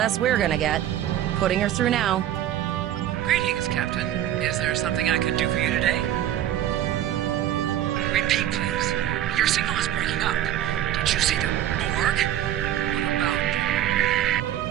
we're gonna get. Putting her through now. Greetings, Captain. Is there something I could do for you today? Repeat, please. Your signal is breaking up. Did you see the Borg? What about...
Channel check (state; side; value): quieter; left; 11.7 dB